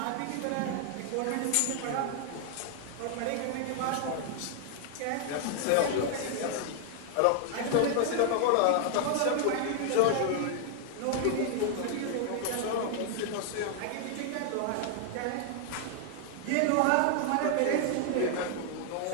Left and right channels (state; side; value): different; both; correlation 0.00